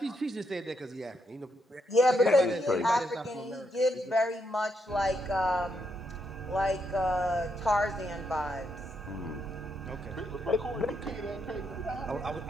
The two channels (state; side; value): normal; both; correlation 0.78